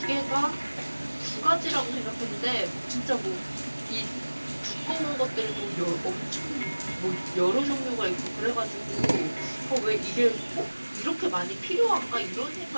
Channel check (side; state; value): both; inverted; correlation -1.00